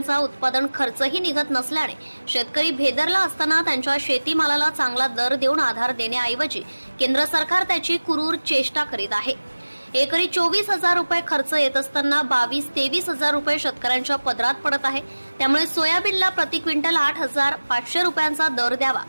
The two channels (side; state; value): both; inverted; correlation -1.00